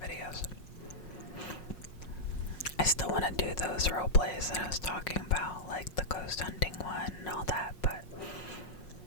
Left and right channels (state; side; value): late; right; 5.5 ms